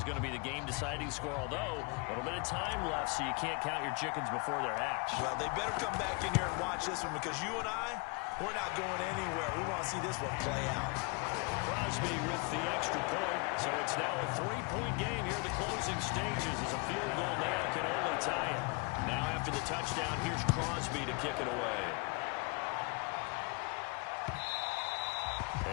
going to be the game-deciding score, although a little bit of time left, so you can't count your chickens before they're hatched. Well, they better come back in here and watch this one because you and I, we're not going anywhere. We want to see this one play out. Crosby with the extra point, so it's now a 3-point game here in the closing stages as a field goal now can only tie it. Now after the touchdown, here's Crosby to kick it away.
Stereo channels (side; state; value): right; quieter; 30.3 dB